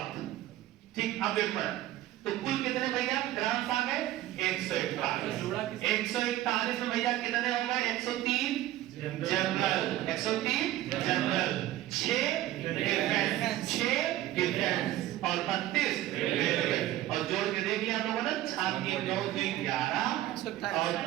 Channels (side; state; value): left; quieter; 14.5 dB